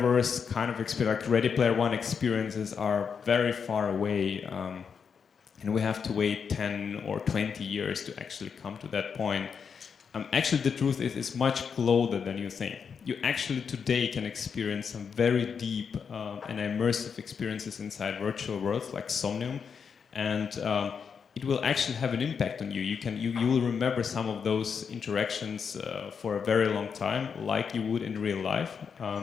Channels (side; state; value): right; quieter; 6.4 dB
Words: kind of experience, like Ready Player One experiences are very far away, and we have to wait 10 or 20 years to actually come to that point. Actually, the truth is it's much closer than you think. You actually today can experience some very deep and immersive experiences inside virtual worlds like Somnium. And it will actually have an impact on you. You will remember some of those interactions for a very long time, like you would in real life.